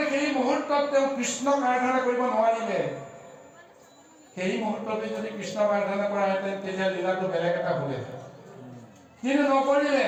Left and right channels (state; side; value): identical; both; correlation 1.00